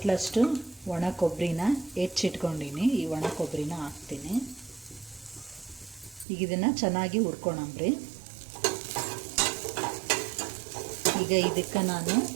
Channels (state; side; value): drops out; left; at 6.2 s